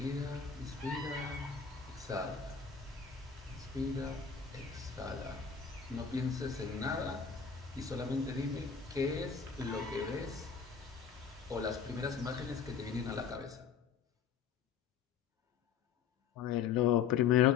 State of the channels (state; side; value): quieter; right; 6.8 dB